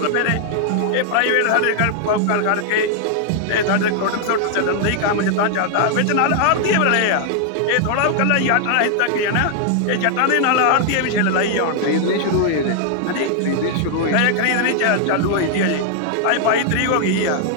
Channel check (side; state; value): both; different; correlation 0.00